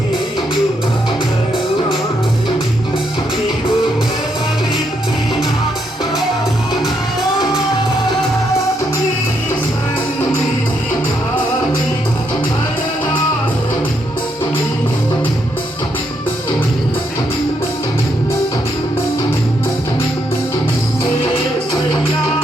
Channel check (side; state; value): both; normal; correlation 0.77